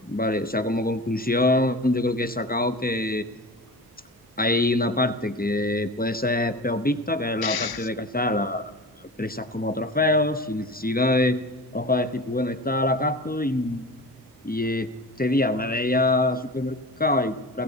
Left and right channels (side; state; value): both; normal; correlation 0.33